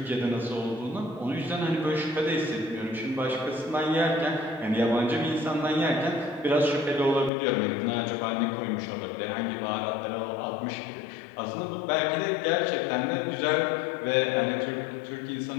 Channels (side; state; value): right; drops out; at 7.3 s